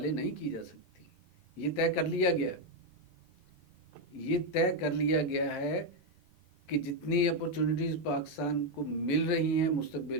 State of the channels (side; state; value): right; late; 5.2 ms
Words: نہیں کی جا سکتی۔ یہ طے کر لیا گیا ہے، یہ طے کر لیا گیا ہے کہ جتنی اپرچونٹیز پاکستان کو مل رہی ہیں